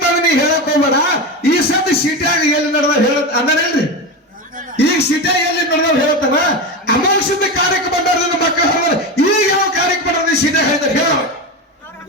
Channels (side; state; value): both; normal; correlation 0.19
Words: ನೀ ಹೇಳಕ್ ಹೋಗ್ಬೇಡ ಈ ಸತಿ ಸಿಟಿಯಾಗ ಎಲ್ಲಿ ನಡೆದ ಹೇಳ ಅಂದನೇನ್ರಿ ಈಗ ಸಿಟಿಯಾಗ ಎಲ್ಲಿ ನಡೆದ ಹೇಳ್ತಾನ ಅಮೋಘಸಿದ್ದ ಕಾರ್ಯಕ್ಕೆ ಬಂದವ್ರದಿಂದ ಮಕ್ಕಳು ಹೇಳಿದ್ರೆ ಈಗ ಯಾವ ಕಾರ್ಯಕ್ಕೆ ಬಂದ ಸಿಟಿಯಾಗ ಹೇಳಿದ್ರೆ ಹೇಳ